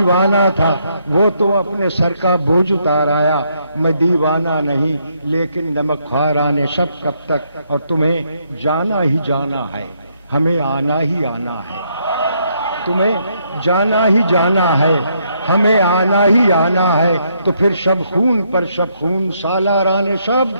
تھا، وہ تو اپنے سر کا بوجھ اتار آیا. میں دیوانہ نہیں لیکن نمک خواران شب کب تک. اور تمہیں جانا ہی جانا ہے، ہمیں آنا ہی آنا ہے. تمہیں جانا ہی جانا ہے، ہمیں آنا ہی آنا ہے. تو پھر شب خون پر شب خون سالاران شب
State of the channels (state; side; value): inverted; both; correlation -0.74